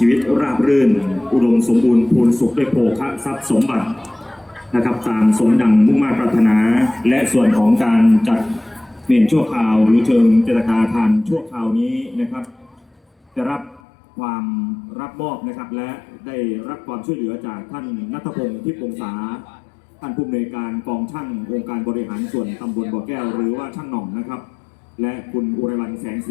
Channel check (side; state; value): right; drops out; at 13.8 s